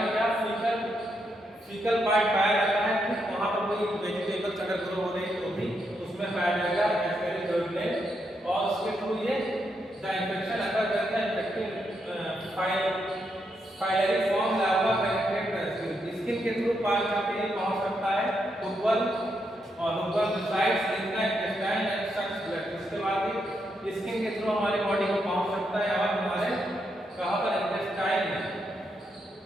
क्या फीकल पार्ट पाया जाता है, ठीक वहां पर कोई वेजिटेबल्स अगर ग्रो हो रहे हैं तो भी उसमें पाया जाएगा एस्कैरिस डुओडेनल, और उसके थ्रू ये द इन्फेक्शन अगर करता है infective filariform larva penetrate the skin के थ्रू पार करके पहुंच सकता है हुकवर्म, और hookworm resides in the intestine and sucks blood. इसके बाद स्किन के थ्रू हमारे बॉडी को पहुंच सकता है और हमारे कहां पर? इंटेस्टाइन में,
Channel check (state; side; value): normal; both; correlation 0.80